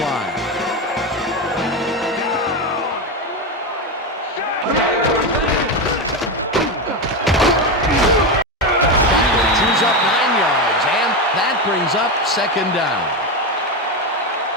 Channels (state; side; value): normal; both; correlation 0.14